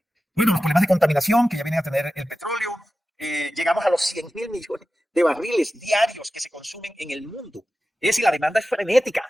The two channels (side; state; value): both; normal; correlation 0.94